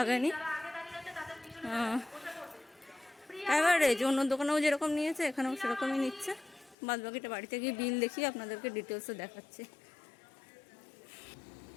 অ্যাভারেজ অন্য দোকানেও যেরকম নিয়েছে এখানেও সেরকমই নিচ্ছে। বাদ বাকিটা বাড়িতে গিয়ে বিল দেখিয়ে আপনাদেরকে ডিটেলসে দেখাচ্ছি।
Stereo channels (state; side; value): drops out; right; at 6.8 s